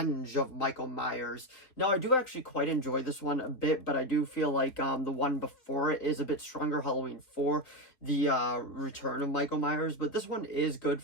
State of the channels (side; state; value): right; late; 3.6 ms